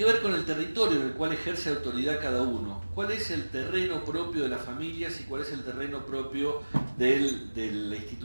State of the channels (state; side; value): inverted; both; correlation -1.00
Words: ver con el territorio en el cual ejerce autoridad cada uno. ¿Cuál es el terreno propio de las familias y cuál es el terreno propio de la